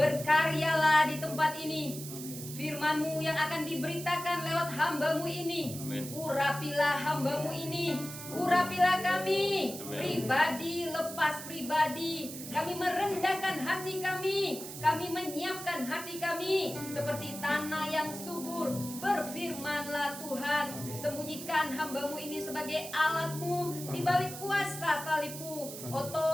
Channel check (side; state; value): right; noise; hiss, 10 dB below the sound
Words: di tempat ini. Firman-Mu yang akan diberitakan lewat hamba-Mu ini. Urapilah hamba-Mu ini. Urapilah kami. Pribadi lepas pribadi. Kami merendahkan hati kami. Kami menyiapkan hati kami seperti tanah yang subur. Berfirmanlah Tuhan. Sembunyikan hamba-Mu ini sebagai alat-Mu di balik kuasa salib-Mu.